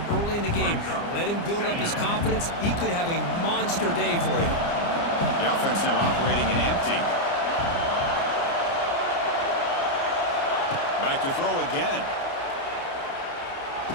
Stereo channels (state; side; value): late; right; 29 ms